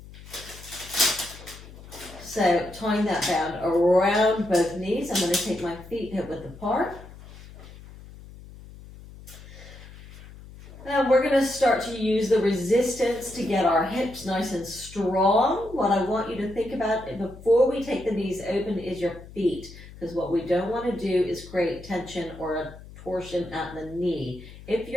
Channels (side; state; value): left; noise; hum, 17 dB below the sound